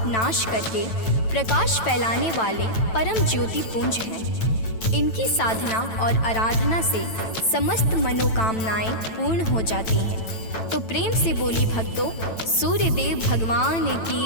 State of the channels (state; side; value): late; right; 9.0 ms